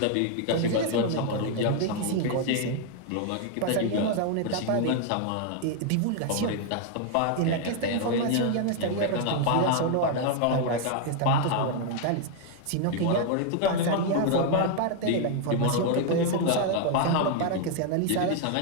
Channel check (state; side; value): different; both; correlation 0.00